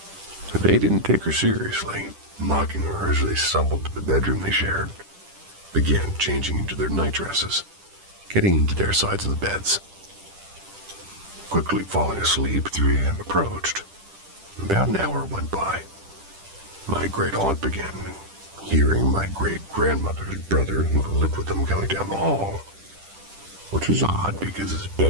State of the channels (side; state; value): left; late; 10 ms